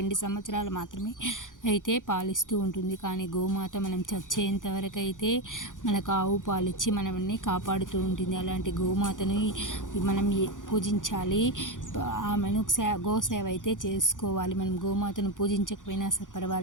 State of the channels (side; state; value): right; late; 0.88 ms